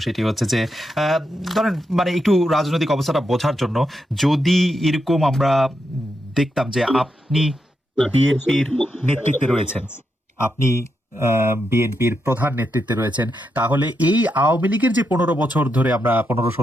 সেটি হচ্ছে যে ধরেন মানে একটু রাজনৈতিক অবস্থাটা বোঝার জন্য, যদি এরকম আমরা দেখতাম যে আপনি বিএনপির নেতৃত্বে রয়েছেন, আপনি বিএনপির প্রধান নেতৃত্বে রয়েছেন, তাহলে এই আওয়ামী লীগের যে 15 বছর ধরে আমরা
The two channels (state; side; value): normal; both; correlation 0.84